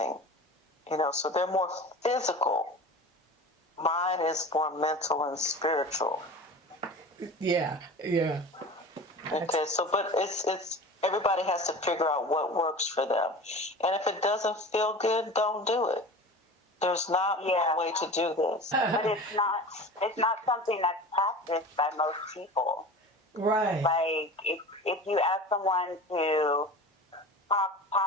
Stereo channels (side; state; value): both; normal; correlation 0.35